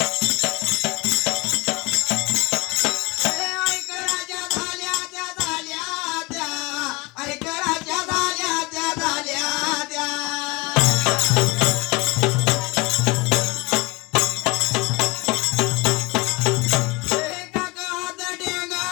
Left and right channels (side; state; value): right; quieter; 25.2 dB